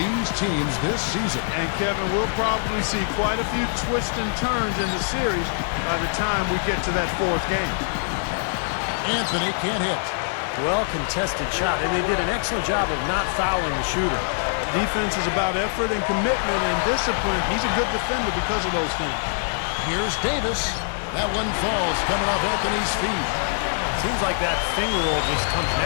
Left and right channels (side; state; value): right; silent; 57 dB below the other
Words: teams this season. And Kevin, we'll probably see quite a few twists and turns in the series by the time we get to that 4th game. Anthony can't hit. Well contested shot, and they did an excellent job of not fouling the shooter. Defense is about effort and commitment and discipline. He's a good defender because of those things. Here's Davis. That one falls coming off Anthony's feet. Seems like that finger roll just comes